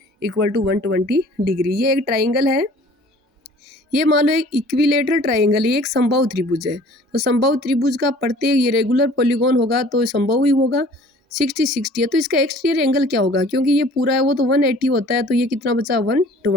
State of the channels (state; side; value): normal; both; correlation 0.50